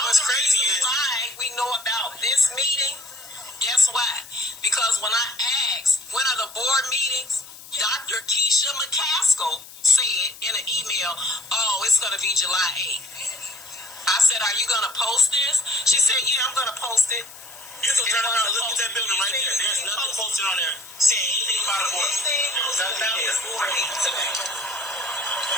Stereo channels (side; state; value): left; noise; hiss, 17 dB below the sound